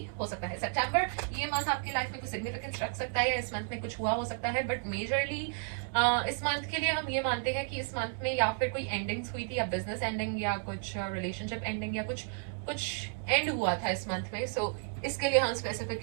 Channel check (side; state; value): left; silent; 56 dB below the other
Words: हो सकता है। सितंबर, ये मंथ आपकी लाइफ में कुछ सिग्निफिकेंस रख सकता है, इस मंथ में कुछ हुआ हो सकता है, बट मेजरली इस मंथ के लिए हम ये मानते हैं कि इस मंथ में या फिर कोई एंडिंग्स हुई थी, या बिजनेस एंडिंग, या कुछ रिलेशनशिप एंडिंग, या कुछ कुछ एंड हुआ था इस मंथ में। सो इसके लिए हम